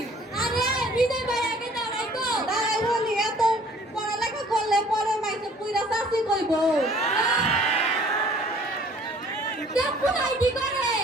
আরে বিজয় ভাই আগে দাঁড়াই তো। তাই বলি, এত পড়ালেখা করলে পরে মাইসে পুইরা চাকরি করব। দেখো আইডি করে।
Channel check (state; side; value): normal; both; correlation 0.54